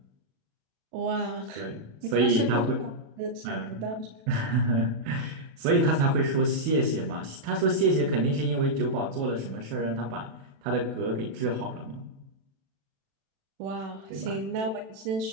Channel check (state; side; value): late; left; 37 ms